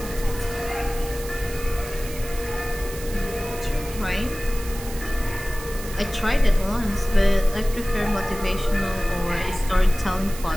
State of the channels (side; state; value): right; noise; hiss, 13 dB below the sound